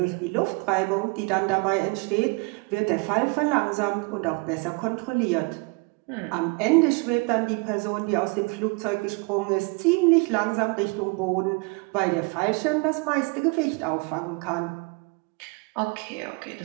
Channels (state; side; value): quieter; left; 30.7 dB